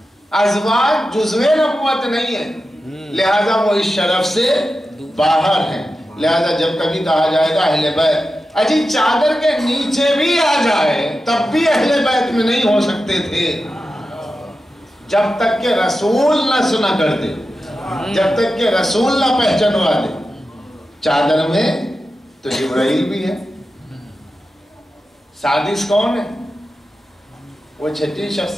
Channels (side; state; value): both; normal; correlation 0.92